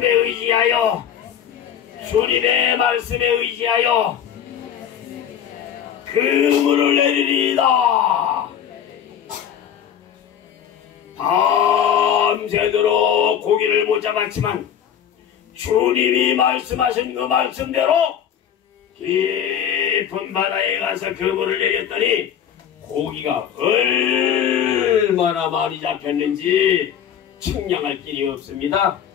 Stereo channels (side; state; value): right; quieter; 9.0 dB